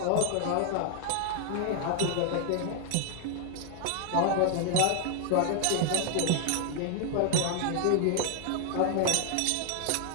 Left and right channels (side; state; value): both; different; correlation 0.00